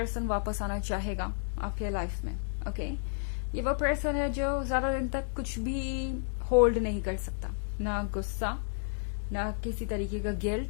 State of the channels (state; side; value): silent; right; digital silence